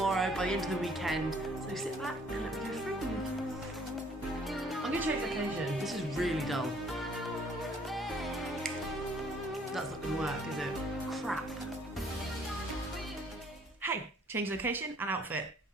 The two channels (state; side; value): normal; both; correlation 0.60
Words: by the end of the weekend. So sit back and let me go through them. I'm going to change location. This is really dull. That's not going to work, is it? Crap. Hey, change location and outfit.